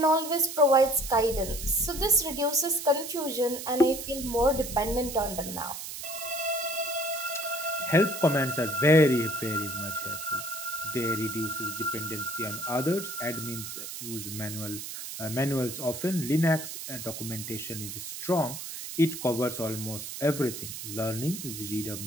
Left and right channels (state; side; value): noise; right; hiss, 8 dB below the sound